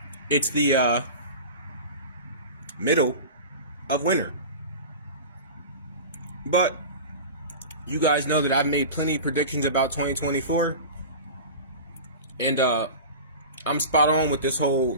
it's the middle of winter. But you guys know that I've made plenty of predictions about 2024, and I'm spot on with this whole,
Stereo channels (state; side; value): inverted; both; correlation -0.32